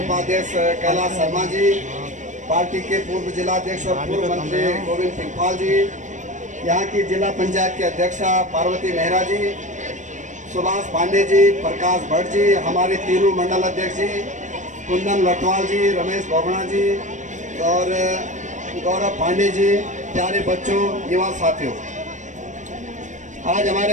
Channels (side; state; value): left; late; 0.35 ms